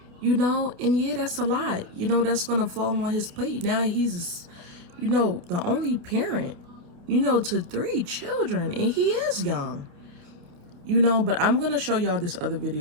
You know, and yeah, that's a lot. You know, that's going to fall on his plate. Now he's, you know, the only parent, you know, to 3 children, and he is young. You know, but I'm going to show y'all this other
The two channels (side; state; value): left; late; 28 ms